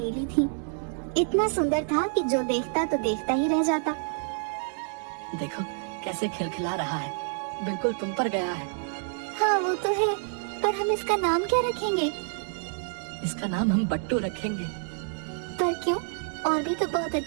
थी, इतना सुंदर था कि जो देखता तो देखता ही रह जाता। देखो कैसे खिलखिला रहा है, बिल्कुल तुम पर गया है। हाँ वो तो है, पर हम इसका नाम क्या रखेंगे? इसका नाम हम बट्टू रखेंगे। पर क्यों? और भी तो बहुत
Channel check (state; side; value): silent; left; 59 dB below the other